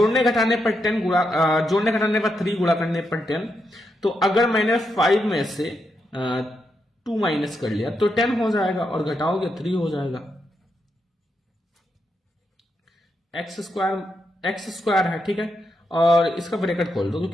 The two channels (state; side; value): normal; both; correlation 0.82